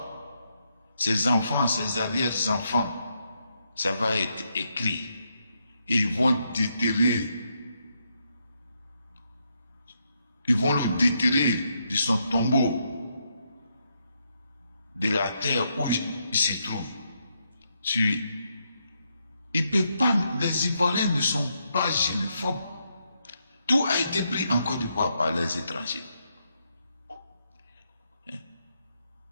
ses enfants, ses arrière-enfants, ça va être écrit. Et ils vont déterrer. Ils vont le déterrer de son tombeau, de la terre où il se trouve. Il peut pas, les Ivoiriens ne sont pas xénophobes. Tout a été pris en Côte d'Ivoire par les étrangers.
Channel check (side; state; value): both; inverted; correlation -0.79